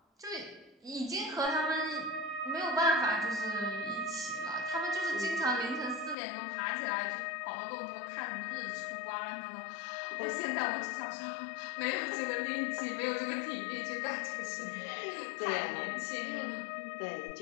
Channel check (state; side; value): drops out; right; at 6.2 s